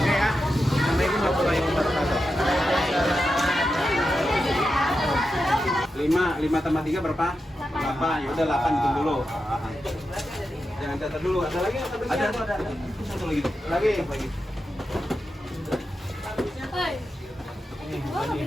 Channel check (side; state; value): both; normal; correlation 0.89